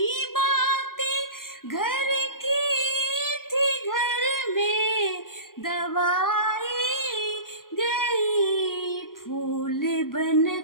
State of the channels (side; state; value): right; late; 0.91 ms